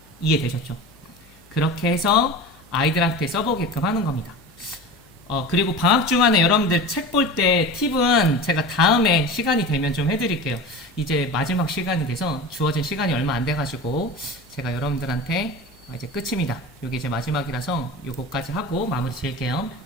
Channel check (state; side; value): noise; left; hum, 29 dB below the sound